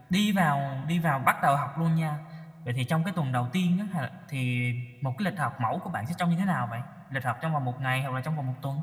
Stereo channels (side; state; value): both; identical; correlation 1.00